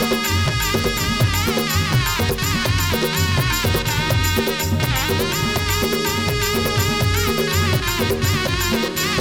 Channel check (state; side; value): identical; both; correlation 1.00